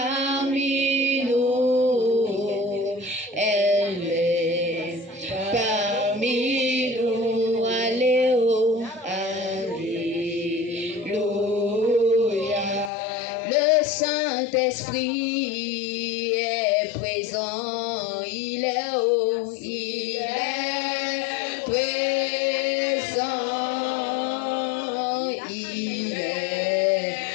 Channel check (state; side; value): drops out; right; at 12.9 s